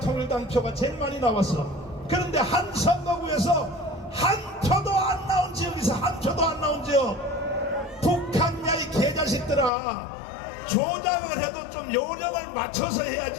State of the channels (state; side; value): drops out; right; at 9.7 s